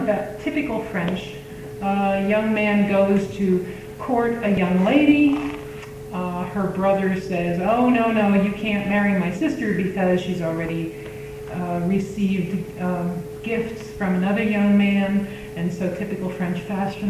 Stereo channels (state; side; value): identical; both; correlation 1.00